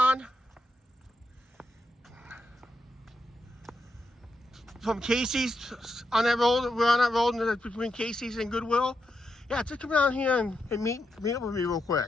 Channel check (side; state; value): both; normal; correlation 0.84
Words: from Casey's, on that road, we're on that road between Casey's and Goodwill. Yeah, just come down here and meet up with me real